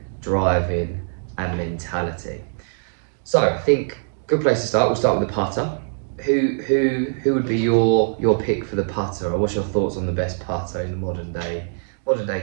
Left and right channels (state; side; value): silent; left; digital silence